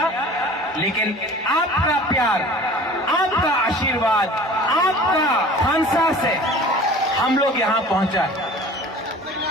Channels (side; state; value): both; normal; correlation 0.43